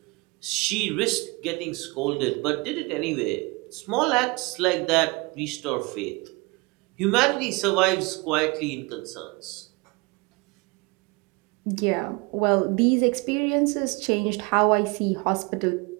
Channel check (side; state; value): left; quieter; 26.7 dB